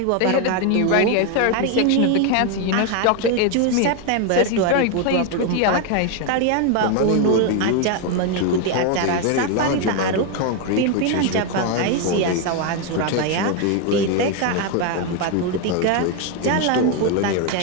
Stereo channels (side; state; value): both; different; correlation 0.01